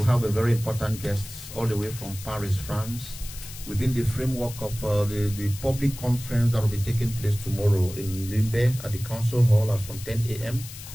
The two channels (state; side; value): noise; left; hiss, 13 dB below the sound